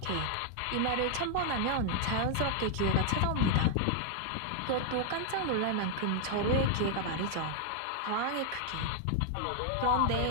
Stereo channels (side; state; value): both; different; correlation 0.00